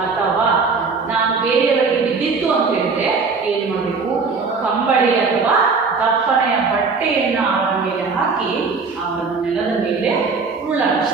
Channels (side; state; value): left; quieter; 4.7 dB